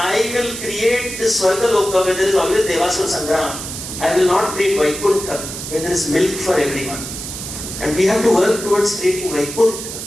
will create this Swargaloka where there is always Devasura Sangram. I will not create Vaikuntha where there is milk for everyone. And we have to work towards creating Vaikuntha.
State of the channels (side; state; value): right; noise; hiss, 8 dB below the sound